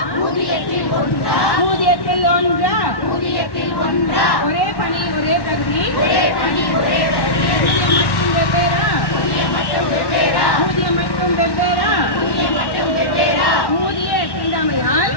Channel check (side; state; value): right; late; 1.1 ms